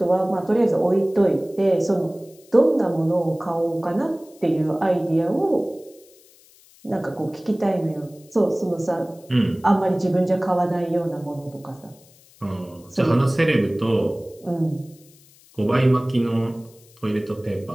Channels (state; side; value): noise; left; hiss, 27 dB below the sound